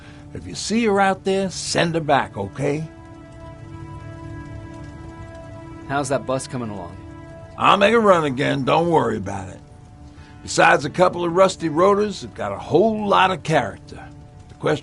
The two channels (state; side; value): identical; both; correlation 1.00